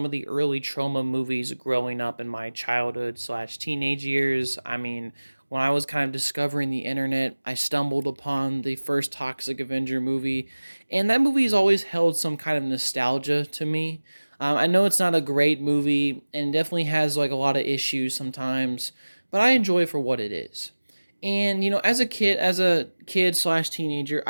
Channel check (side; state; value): both; inverted; correlation -1.00